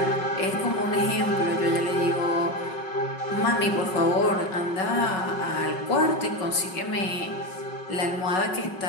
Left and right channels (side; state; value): right; late; 5.4 ms